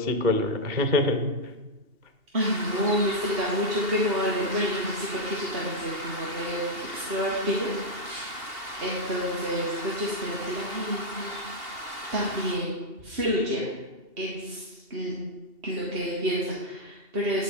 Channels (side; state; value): left; late; 2.8 ms